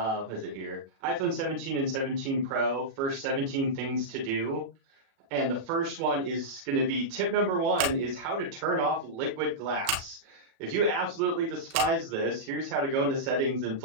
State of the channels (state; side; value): late; left; 36 ms